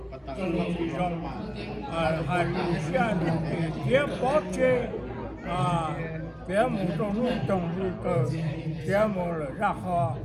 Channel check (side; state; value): both; identical; correlation 1.00